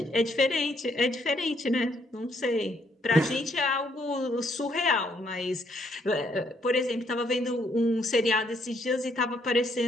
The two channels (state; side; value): normal; both; correlation 0.71